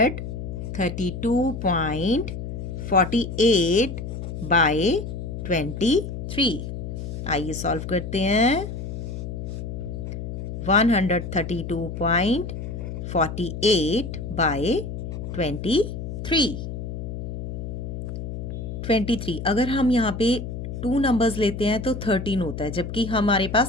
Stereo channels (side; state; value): left; noise; hum, 6 dB below the sound